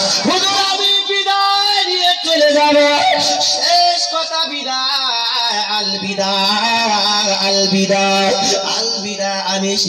হুজুর আমি বিদায় নিয়ে চলে যাব, শেষ কথা বিদায়, আল বিদায়। আলবিদা আলবিদা, আমি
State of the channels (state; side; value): identical; both; correlation 1.00